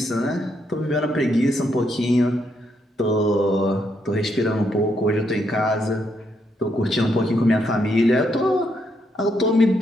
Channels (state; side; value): normal; both; correlation 0.77